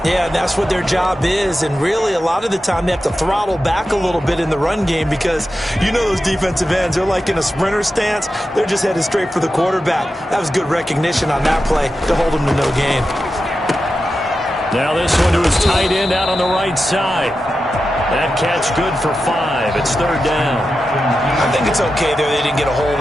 Yeah, and that's what their job is. And really, a lot of the time, they have to throttle back a little bit in the run game because you know those defensive ends, they're like in a sprinter stance. They're just headed straight for the quarterback. That was good recognition on that play to hold them to no gain. Now this one to his tight end out on the right side. That catch good for 5. It's 3rd down. I think it's okay there. They didn't get a whole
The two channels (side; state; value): both; normal; correlation 0.91